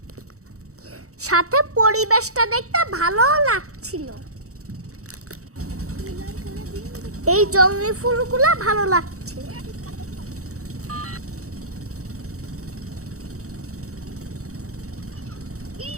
সাথে পরিবেশটা দেখতে ভালো লাগছিল। এই জঙ্গলি ফুলগুলো ভালো লাগছে।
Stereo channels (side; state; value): left; late; 0.65 ms